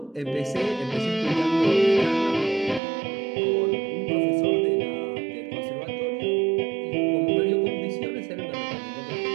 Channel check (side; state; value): left; drops out; at 2.8 s